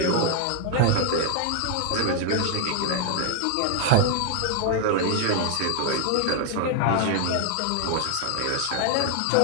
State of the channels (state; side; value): different; both; correlation 0.00